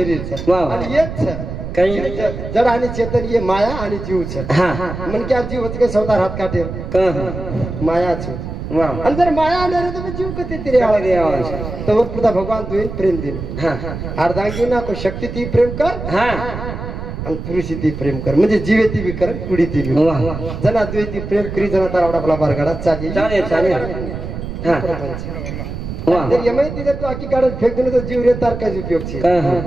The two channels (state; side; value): noise; right; rumble, 7 dB below the sound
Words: आणि येच जड आणि चेतन ये माया आणि जीव मन क्या जीव होते स्वतः हात काटे माया आणि जर माया आणार तर जीव कधी तरी तर पुढे भगवान तुझे प्रेम दिन अर्धांगी ना को शक्ती ती प्रेम कर आणि पुरुषी ती प्रेम कर म्हणजे जीवे ती बी कर कुडी ती बी जना तुझे ती प्रेम करी जना तारा आपला बारगाडा चालेल यमय ती जर तू आखी काढून फेक दिलं तर जीव रे तार काय उपयोग छे